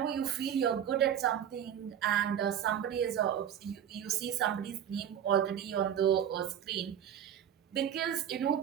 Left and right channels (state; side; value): quieter; left; 9.5 dB